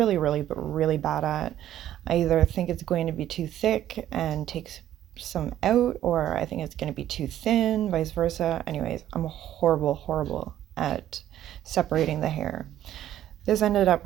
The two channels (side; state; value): left; quieter; 12.1 dB